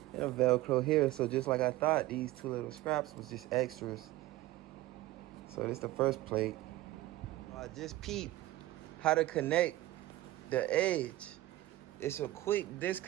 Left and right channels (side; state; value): left; quieter; 16.6 dB